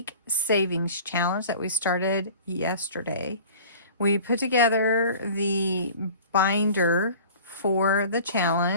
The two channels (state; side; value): inverted; both; correlation -0.43